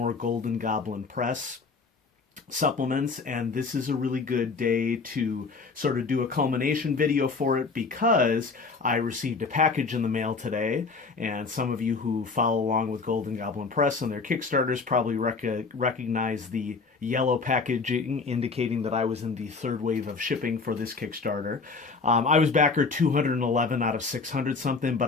Golden Goblin Press supplements, and this is a really good day to sort of do a culmination video for it because I received a package in the mail today, and some of you who follow along with Golden Goblin Press and their Kickstarters probably recognize the yellow packaging indicating that I was in the third wave of shipping for this Kickstarter. I was backer 211 out of 600 something, but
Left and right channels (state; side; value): quieter; right; 4.4 dB